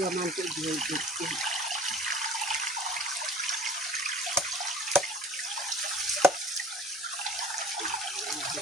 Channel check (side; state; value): both; normal; correlation 0.47